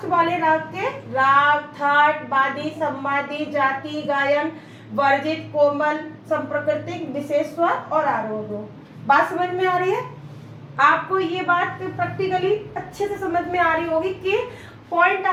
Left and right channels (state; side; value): identical; both; correlation 1.00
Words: वाले राग के। राग, थाट, बादी, संवादी, जाति, गायन, वर्जित, कोमल, संप्रकृतिक, विशेष स्वर और आरोह। बात समझ में आ रही है? आपको ये बात प्रैक्टिकली अच्छे से समझ में आ रही होगी कि पॉइंट